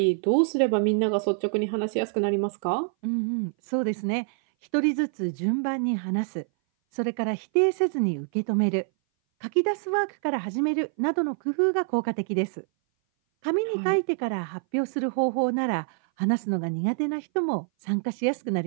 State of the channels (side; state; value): left; silent; 58 dB below the other